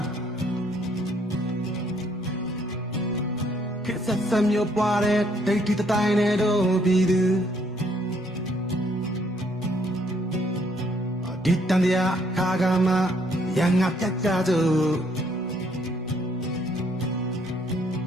ခေတ်ဆက်မျိုးပွားတဲ့ဒိတ်တီတိုင်းနဲ့တို့ပြည်သူဒီတန်တရားခါကမှရန်ငါပြတ်ကြသူ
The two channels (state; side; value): normal; both; correlation 0.67